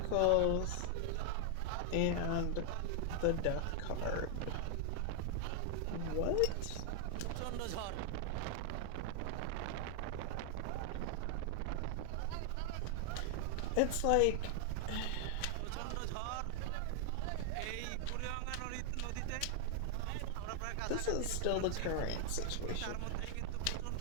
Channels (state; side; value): different; both; correlation 0.00